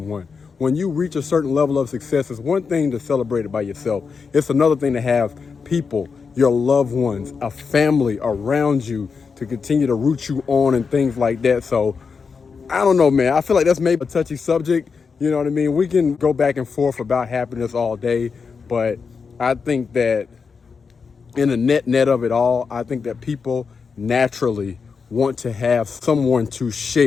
When you reach a certain level of success, it's one thing to celebrate it by yourself. It's another thing to have people, your loved ones, a family around you to continue to root you on and things like that. So I don't know, man. I feel like that's maybe a touchy subject. You know what I mean? We can go back and forth about happiness all day, but I think that in the net of it all, I think that people naturally want to have someone to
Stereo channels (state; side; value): quieter; right; 5.4 dB